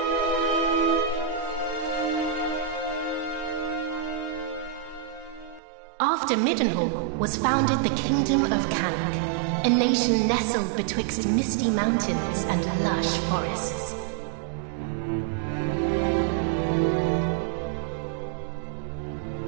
After Middenhall was founded the Kingdom of Cannock, a nation nestled betwixt misty mountains and lush forests.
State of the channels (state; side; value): drops out; left; at 5.6 s